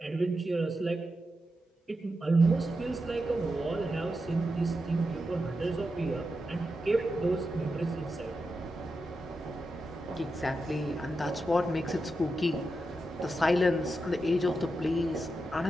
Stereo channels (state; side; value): normal; both; correlation 0.88